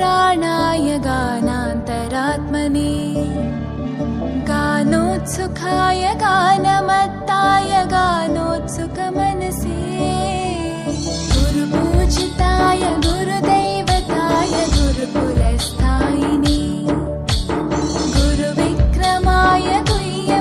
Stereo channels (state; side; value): identical; both; correlation 1.00